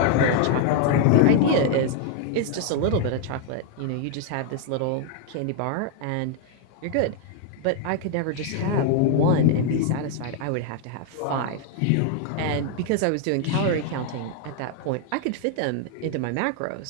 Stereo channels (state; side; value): different; both; correlation 0.00